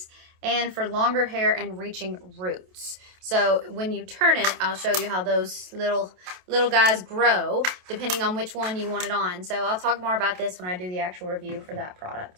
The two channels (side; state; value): left; late; 27 ms